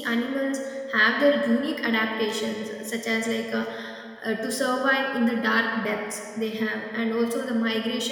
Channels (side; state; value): both; identical; correlation 1.00